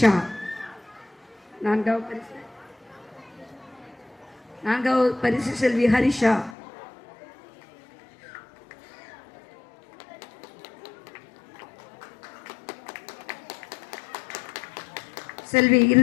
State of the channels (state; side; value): drops out; right; at 6.6 s